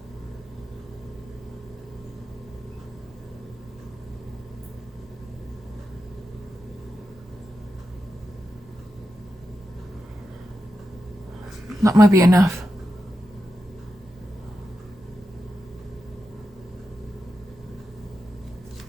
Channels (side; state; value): both; normal; correlation 0.89